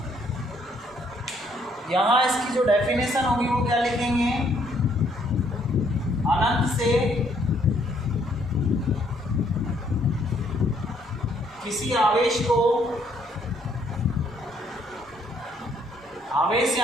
यहाँ इसकी जो डेफिनेशन होगी वो क्या लिखेंगे। अनंत से किसी आवेश को, आवेश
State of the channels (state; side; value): normal; both; correlation 0.67